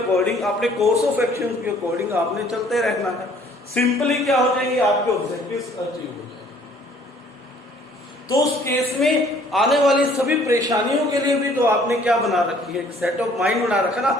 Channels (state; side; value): normal; both; correlation 0.57